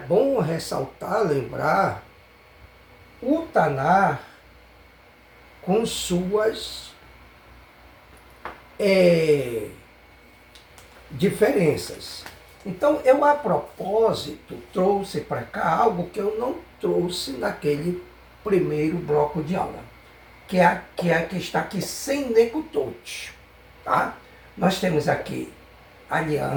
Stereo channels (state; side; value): identical; both; correlation 1.00